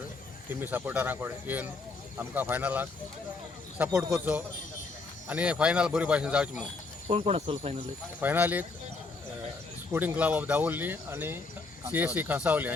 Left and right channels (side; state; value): right; quieter; 3.9 dB